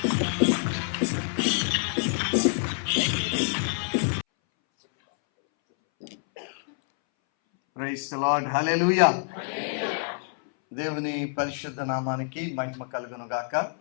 ప్రైజ్ ది లార్డ్, హల్లెలూయా. దేవుని పరిశుద్ధ నామానికి మహిమ కలుగును గాక.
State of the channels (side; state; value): right; silent; 60 dB below the other